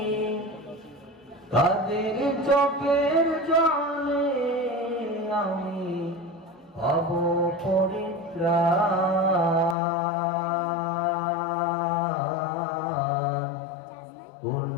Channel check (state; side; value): drops out; right; at 9.8 s